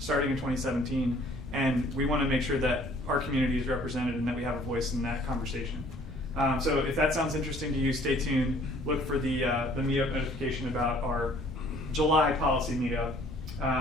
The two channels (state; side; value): normal; both; correlation 0.57